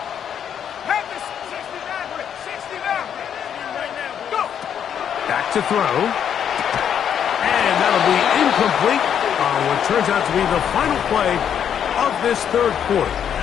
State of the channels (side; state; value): right; quieter; 8.7 dB